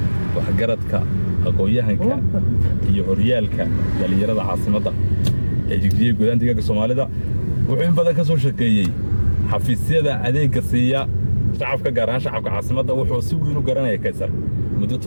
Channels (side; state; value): both; inverted; correlation -1.00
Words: waxgaradka aqoonyahanka iyo horyaalka dhalinyarada caasimadda ee Jigjiga gudaha deegaanka Soomaalida wuxuu in badan ka soo shaqeeyay xafiisyada adeegga siiya shacabka gaar ahaan shacabka caasimadda wuxuu si weyn u garanayay Kaysar muddo